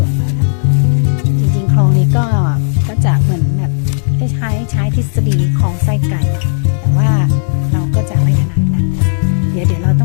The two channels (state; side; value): silent; right; digital silence